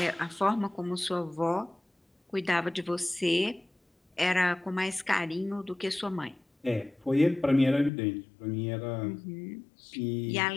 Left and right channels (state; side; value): drops out; right; at 7.9 s